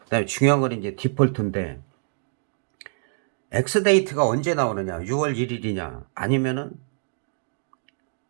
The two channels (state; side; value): silent; left; digital silence